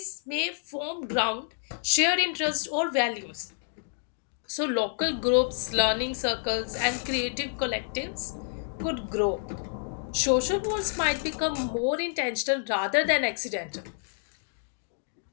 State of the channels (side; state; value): right; silent; digital silence